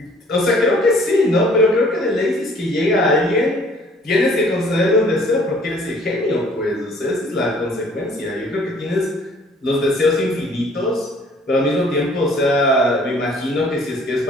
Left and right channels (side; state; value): both; normal; correlation 0.57